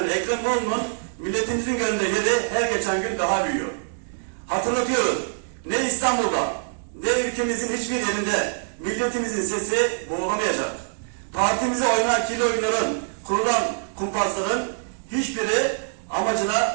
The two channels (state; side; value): silent; left; digital silence